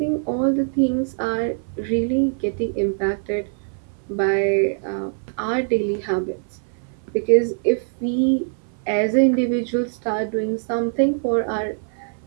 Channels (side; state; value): left; silent; 58 dB below the other